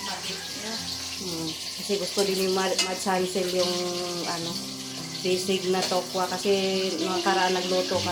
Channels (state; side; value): identical; both; correlation 1.00